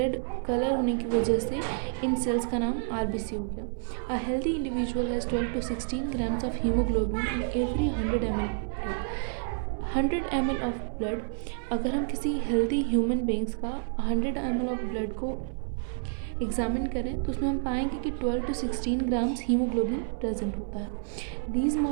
कलर होने की वजह से इन सेल्स का नाम RBC हो गया। A healthy individual has 12 to 16 grams of haemoglobin in every 100 ml blood. 100 ml of blood, अगर हम किसी हेल्दी ह्यूमन बींग्स का 100 ml ऑफ ब्लड को एग्जामिन करें तो उसमें हम पाएंगे कि 12 to 16 ग्राम्स हीमोग्लोबिन प्रेजेंट होता है। These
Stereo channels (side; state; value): left; silent; 58 dB below the other